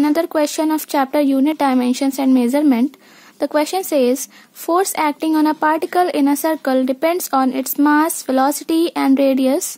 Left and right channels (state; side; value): identical; both; correlation 1.00